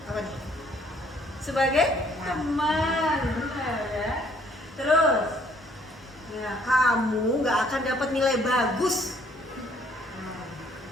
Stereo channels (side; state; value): both; normal; correlation 0.62